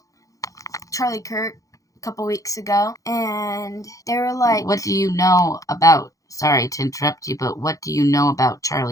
Charlie Kirk a couple weeks ago, and they were like... What do you know about, sorry to interrupt you, but what do you know about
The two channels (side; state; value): right; late; 0.16 ms